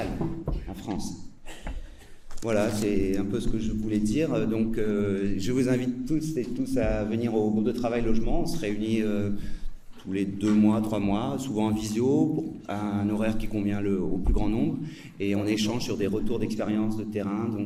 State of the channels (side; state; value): both; identical; correlation 1.00